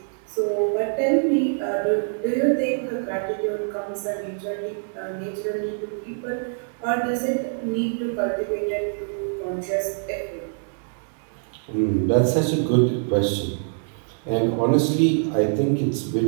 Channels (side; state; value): left; silent; digital silence